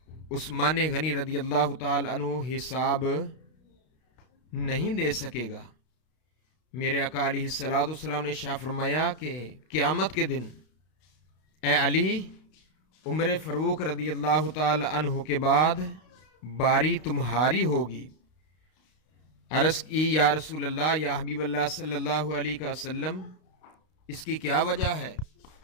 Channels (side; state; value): right; late; 32 ms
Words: عثمان غنی رضی اللہ تعالی عنہ حساب نہیں دے سکے گا۔ میرے آقا علیہ السلام نے ارشاد فرمایا کہ قیامت کے دن اے علی، عمر فاروق رضی اللہ تعالی عنہ کے بعد باری تمہاری ہوگی۔ عرض کی یا رسول اللہ، یا حبیب اللہ صلی اللہ علیہ وسلم، اس کی کیا وجہ ہے؟